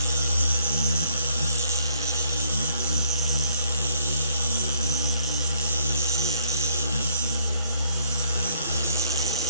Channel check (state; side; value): inverted; both; correlation -0.64